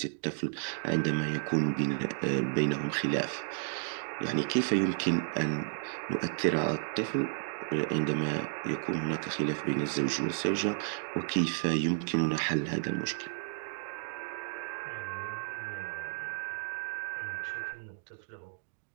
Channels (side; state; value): left; silent; digital silence